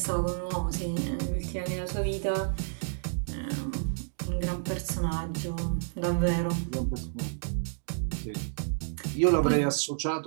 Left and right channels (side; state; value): left; silent; digital silence